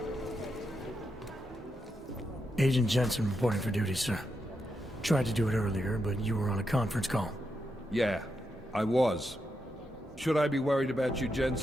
Agent Jensen reporting for duty, sir. Tried to do it earlier, but you were on a conference call. Yeah, I was. Should I be worried about you,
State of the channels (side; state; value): both; normal; correlation 0.84